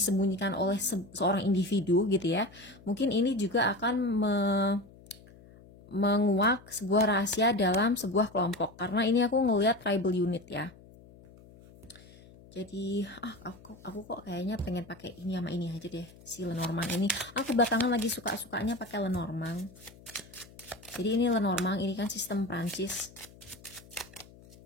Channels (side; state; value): left; noise; hum, 22 dB below the sound